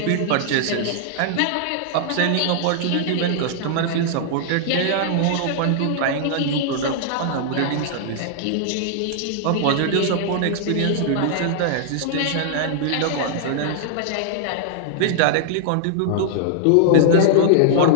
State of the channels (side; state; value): both; different; correlation -0.01